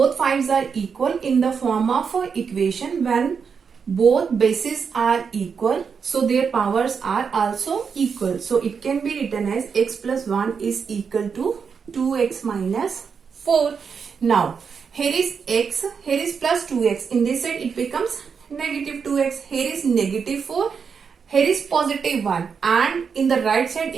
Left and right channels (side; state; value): left; quieter; 6.1 dB